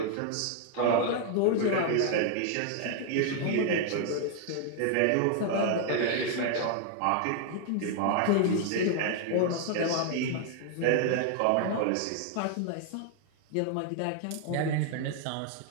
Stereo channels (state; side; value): different; both; correlation 0.00